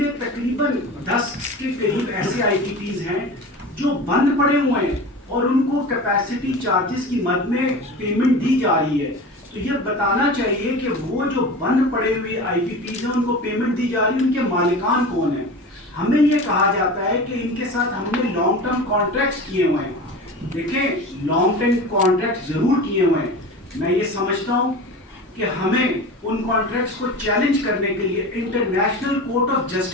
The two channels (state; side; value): normal; both; correlation 0.32